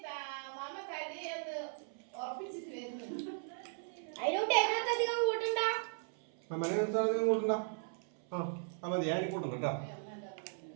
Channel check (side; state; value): left; silent; 53 dB below the other